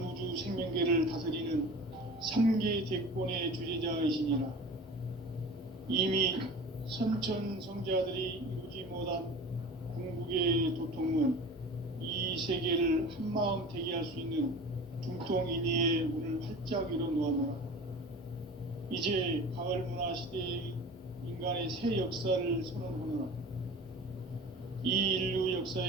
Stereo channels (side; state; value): both; normal; correlation 0.38